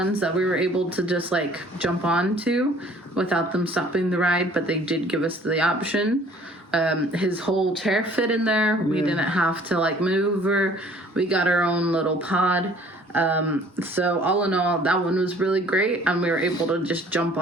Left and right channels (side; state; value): both; normal; correlation 0.54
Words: that we were able to just like jump onto without them stopping the ride, but they did give us the option. His whole chair fit in there. We didn't have to like move, or we got our own little pod. So all in all, that one was really great, and we were able to just jump